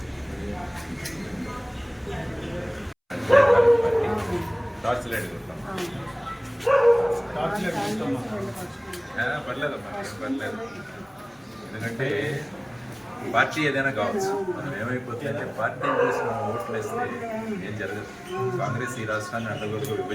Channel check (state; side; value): identical; both; correlation 1.00